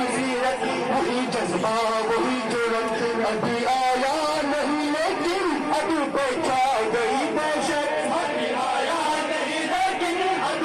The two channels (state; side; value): identical; both; correlation 1.00